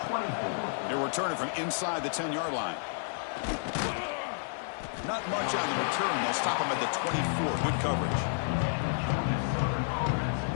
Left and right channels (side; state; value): right; silent; 57 dB below the other